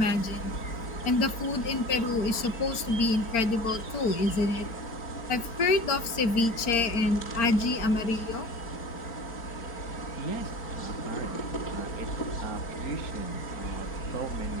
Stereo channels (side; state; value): right; late; 4.4 ms